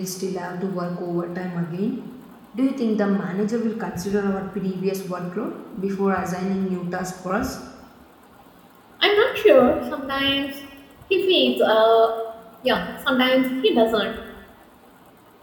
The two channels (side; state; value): both; identical; correlation 1.00